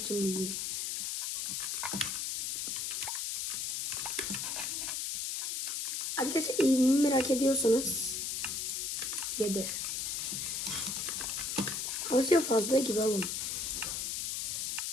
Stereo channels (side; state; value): left; noise; hiss, 2 dB below the sound